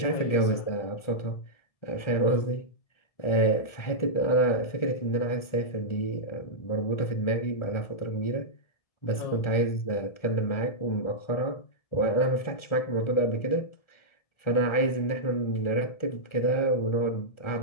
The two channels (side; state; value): right; late; 1.4 ms